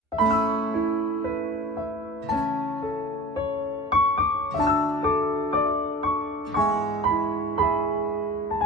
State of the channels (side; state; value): both; normal; correlation 0.40